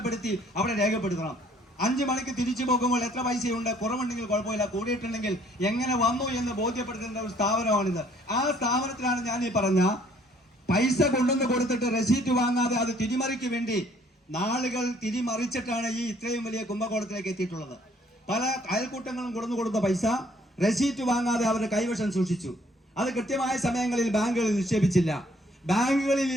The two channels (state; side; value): normal; both; correlation 0.62